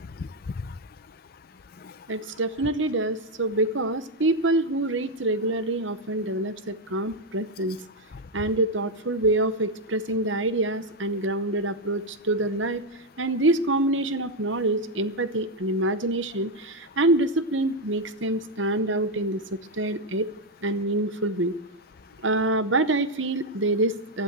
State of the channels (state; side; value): normal; both; correlation 0.04